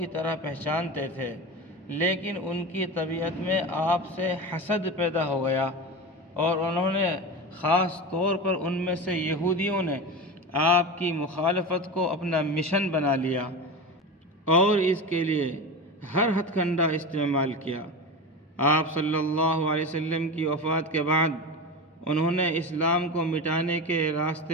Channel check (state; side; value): normal; both; correlation 0.25